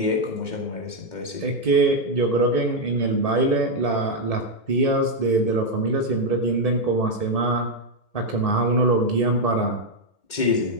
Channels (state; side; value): late; right; 2.1 ms